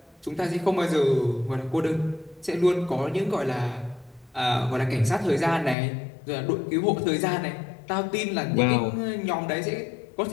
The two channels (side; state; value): right; drops out; at 5.8 s